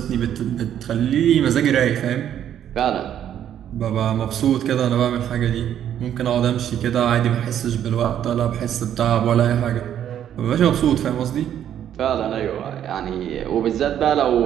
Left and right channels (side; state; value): left; quieter; 10.2 dB